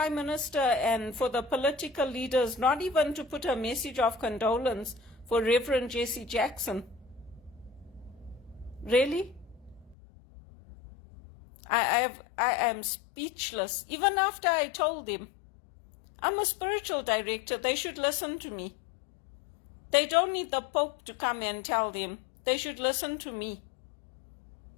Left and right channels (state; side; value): drops out; right; at 10.0 s